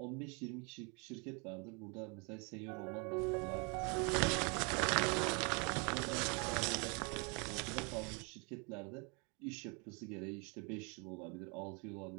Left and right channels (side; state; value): left; quieter; 32.9 dB